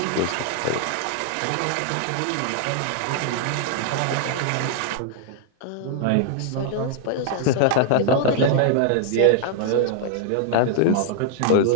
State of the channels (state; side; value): different; both; correlation 0.00